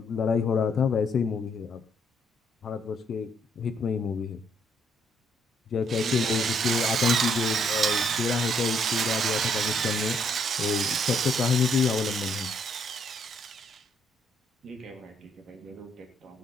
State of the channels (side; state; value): both; normal; correlation 0.70